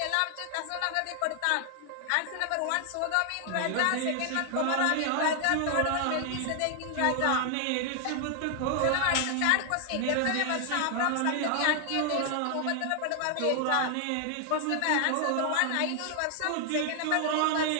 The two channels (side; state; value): both; different; correlation 0.00